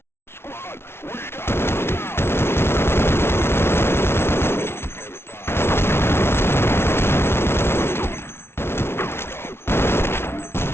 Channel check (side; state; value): right; late; 0.12 ms